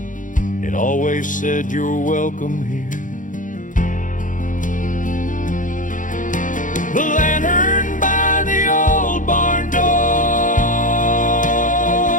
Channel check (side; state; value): right; late; 0.38 ms